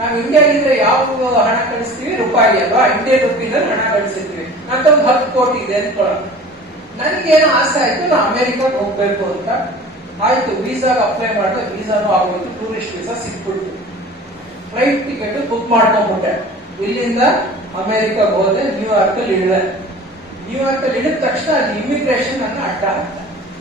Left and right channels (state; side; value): normal; both; correlation 0.42